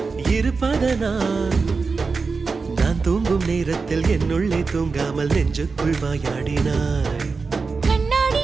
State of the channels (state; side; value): quieter; left; 4.5 dB